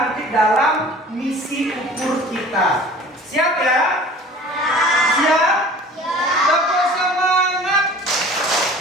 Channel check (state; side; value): normal; both; correlation 0.44